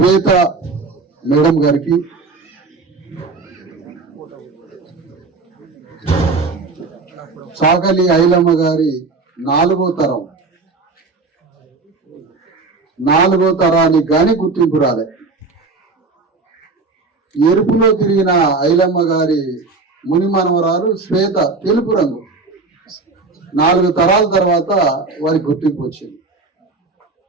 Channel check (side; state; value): left; quieter; 3.9 dB